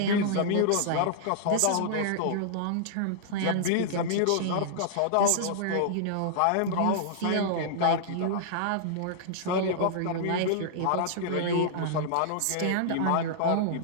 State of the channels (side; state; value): both; different; correlation -0.01